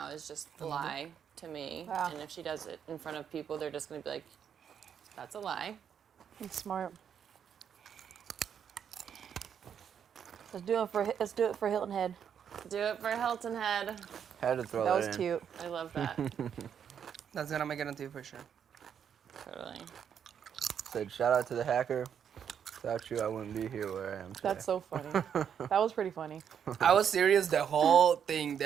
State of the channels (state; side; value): quieter; left; 8.1 dB